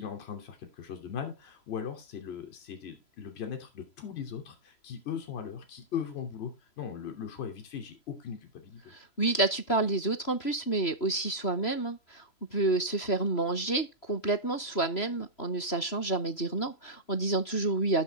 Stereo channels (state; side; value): late; right; 3.0 ms